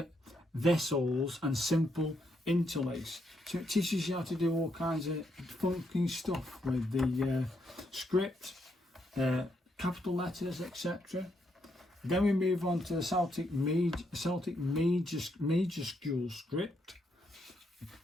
vessels and simple interlace. So it teaches you how to do all kinds of funky stuff with the script, capital letters, etc. Then we move on to the Celtic majuscule script.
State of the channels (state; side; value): normal; both; correlation 0.77